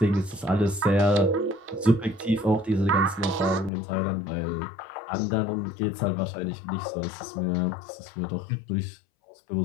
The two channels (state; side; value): drops out; right; at 3.7 s